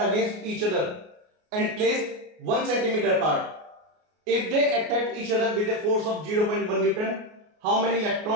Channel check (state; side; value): late; left; 33 ms